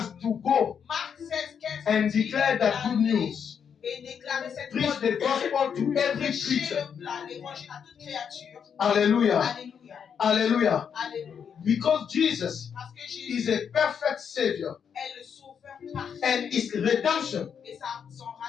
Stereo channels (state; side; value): quieter; right; 7.4 dB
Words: to go Marc 16, 15 and dit declare that good d'aller news. et déclarer cette Preach bonne the gospel to every prêcher creature. l'évangile à toute créature. Hallelujah. Alléluia. Hallelujah. Alléluia. Because Jesus Parce que is Jésus a perfect Savior est le sauveur parfait. and his redemption Et son